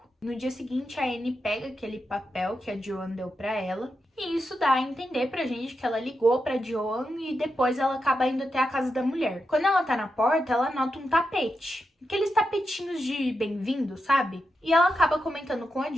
No dia seguinte, a Anne pega aquele papel que a Joan deu pra ela, e isso dá a entender pra gente que ela ligou pra Joan e depois ela acaba indo até a casa da mulher. Quando ela tá na porta, ela nota um tapete. Aqueles tapetinhos de bem-vindo, sabe? E ela acaba comentando com a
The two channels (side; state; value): both; normal; correlation 0.87